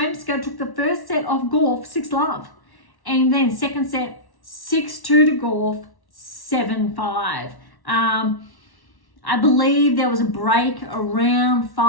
took the first set off Gauff, 6-love. And then second set, 6-2 to Gauff, 7-5. I believe there was a break around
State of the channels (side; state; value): right; late; 1.1 ms